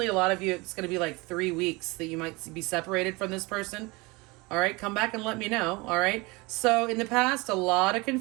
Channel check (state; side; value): quieter; left; 24.9 dB